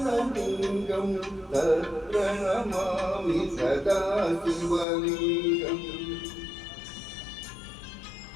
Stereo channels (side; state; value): right; drops out; at 4.9 s